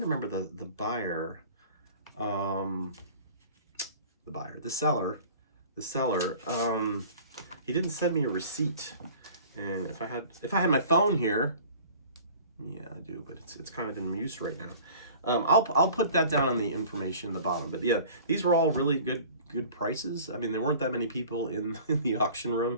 to remember the buyer, the seller. He didn't send me a receipt, and if I had my phone here, yeah, I do, but it's kind of in use right now. I'll put that down on the information in the bottom. But yeah, these were all really good prices. I mean, there weren't that many people in the auction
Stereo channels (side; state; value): both; inverted; correlation -0.46